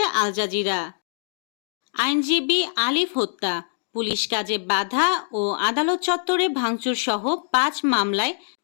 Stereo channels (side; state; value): right; silent; digital silence